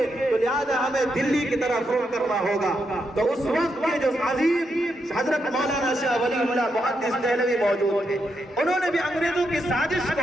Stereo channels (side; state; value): both; normal; correlation 0.82